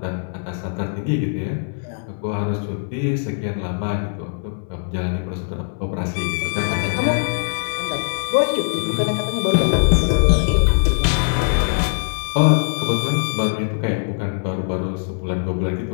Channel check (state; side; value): silent; right; 65 dB below the other